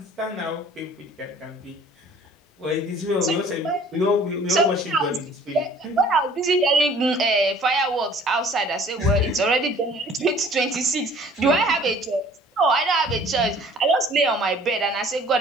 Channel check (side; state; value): both; normal; correlation 0.52